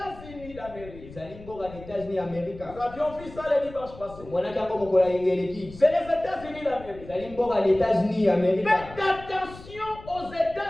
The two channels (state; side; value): noise; left; rumble, 17 dB below the sound